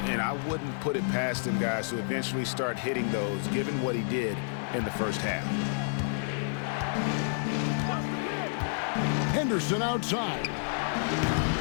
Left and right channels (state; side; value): silent; right; 58 dB below the other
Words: And I wouldn't put it past him, guys, to eventually start hitting those, given what he did in the first half. Henderson outside.